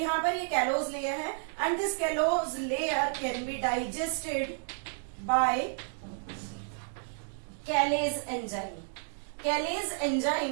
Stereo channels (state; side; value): silent; left; digital silence